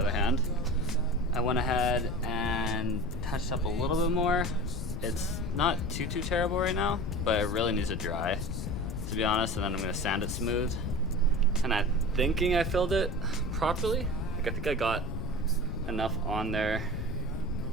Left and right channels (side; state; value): left; noise; rumble, 4 dB below the sound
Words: hand, I went ahead and touched up a little bit more. It's not too terrible right now, but it really needs to dry, to be honest, and then I'm gonna sand it smooth. And I'm thinking I filled it properly. Like, I think I got enough on there